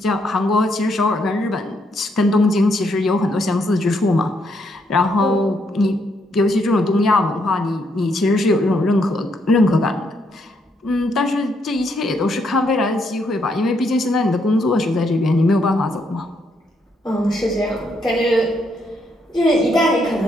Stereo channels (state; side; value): normal; both; correlation 0.75